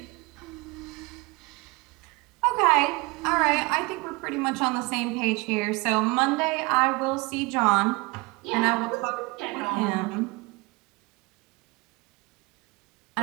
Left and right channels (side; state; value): left; quieter; 26.1 dB